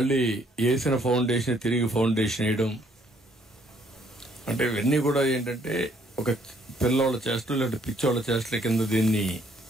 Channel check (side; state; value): both; normal; correlation 0.65